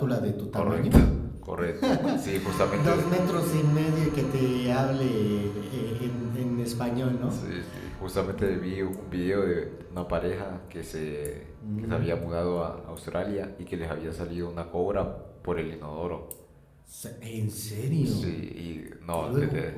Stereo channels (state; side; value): identical; both; correlation 1.00